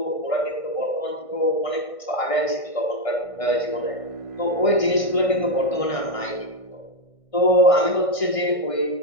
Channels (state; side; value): late; right; 1.6 ms